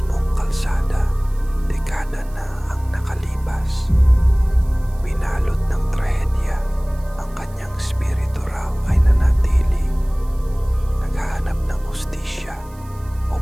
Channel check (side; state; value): right; noise; hiss, 26 dB below the sound